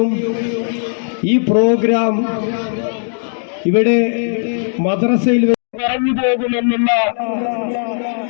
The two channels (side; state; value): right; silent; digital silence